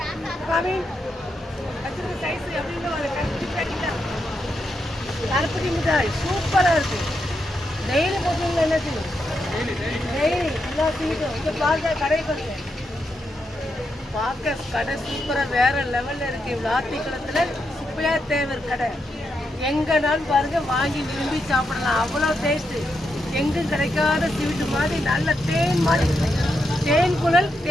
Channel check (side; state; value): both; normal; correlation 0.83